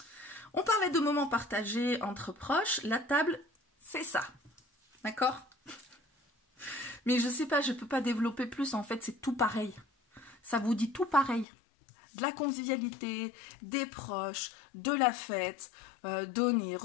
On parlait de moments partagés entre proches. La table, c'est ça. D'accord? Mais je sais pas, je peux pas développer plus. En fait, c'est tout pareil. Ça vous dit tout pareil. De la convivialité, des proches, de la fête, donner,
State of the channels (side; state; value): right; drops out; at 11.5 s